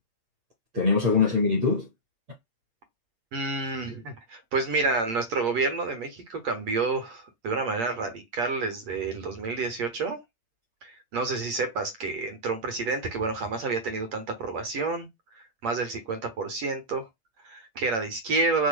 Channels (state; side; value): late; left; 8.6 ms